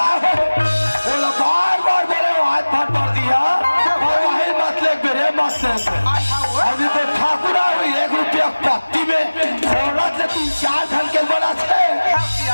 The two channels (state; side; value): inverted; both; correlation -1.00